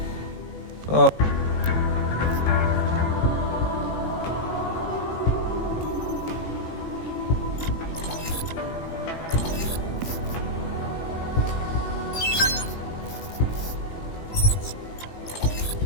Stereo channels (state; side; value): late; right; 18 ms